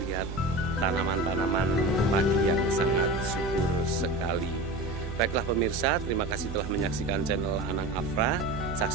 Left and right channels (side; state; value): right; noise; hum, 8 dB below the sound